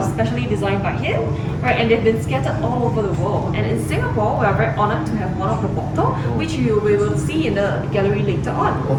specially designed by him, right? And they've been scattered all over the world. And in Singapore, we are very honored to have one of the bottles, which we will see in the gallery later on.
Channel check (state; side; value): identical; both; correlation 1.00